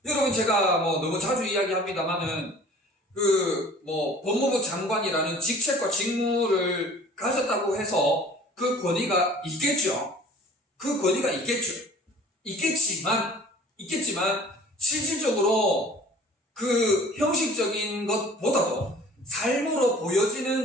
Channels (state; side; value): normal; both; correlation 0.48